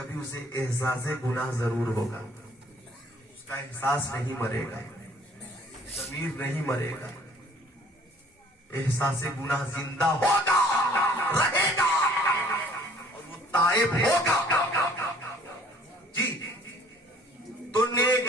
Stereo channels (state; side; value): normal; both; correlation 0.56